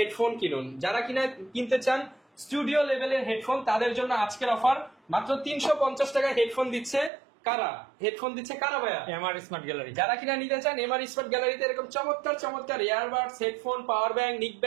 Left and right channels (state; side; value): drops out; left; at 7.1 s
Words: কিনুন। যারা কিনা কিনতে চান স্টুডিও লেভেলের হেডফোন, তাদের জন্য আজকের অফার মাত্র 350 টাকায় হেডফোন দিচ্ছে কারা? হেডফোন দিচ্ছে কারা ভাইয়া? MR smart gallery. যারা কিনা নিতে চান এমআর স্মার্ট গ্যালারিতে এরকম চমৎকার চমৎকার ইয়ারবাডস, হেডফোন, পাওয়ার ব্যাংক, নিক